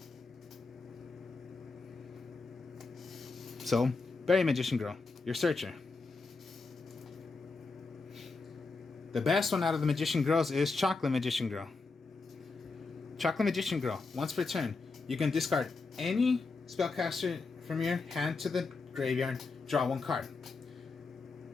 So, Bury Magician Girl, your searcher. The best one out of the Magician Girls is Chocolate Magician Girl. Chocolate Magician Girl, once per turn, you can discard any spellcaster from your hand to the graveyard, draw one card.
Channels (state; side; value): quieter; right; 4.1 dB